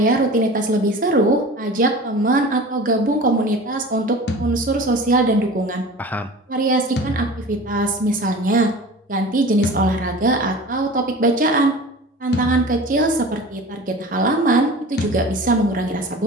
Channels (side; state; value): both; normal; correlation 0.38